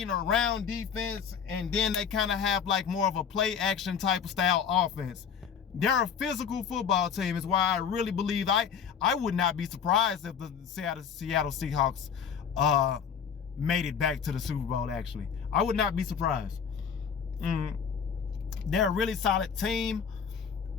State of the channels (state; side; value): quieter; right; 7.2 dB